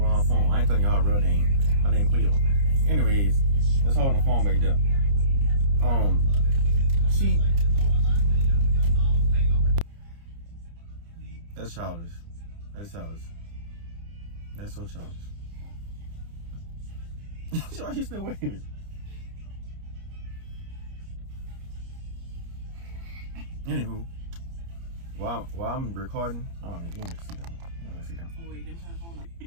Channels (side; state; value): left; late; 30 ms